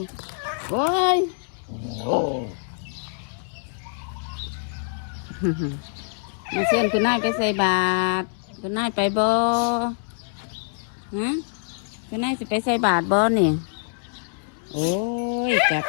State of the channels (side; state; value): right; silent; 62 dB below the other